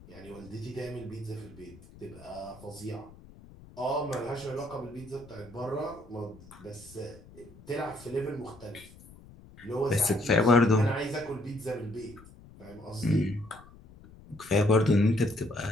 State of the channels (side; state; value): left; noise; rumble, 21 dB below the sound